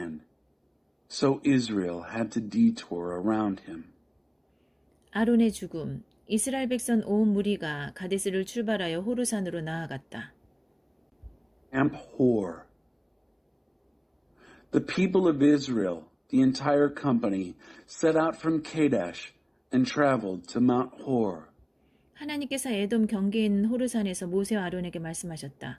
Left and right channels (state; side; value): identical; both; correlation 1.00